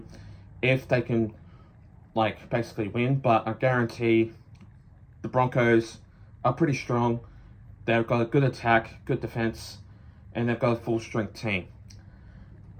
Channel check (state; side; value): identical; both; correlation 1.00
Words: if they can basically win. But I guarantee the Broncos are pretty strong. They've got a good attack, good defense, and they've got a full strength team.